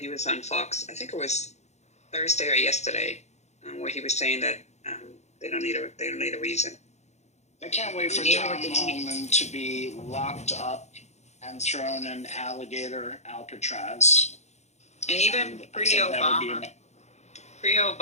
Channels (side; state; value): right; late; 0.33 ms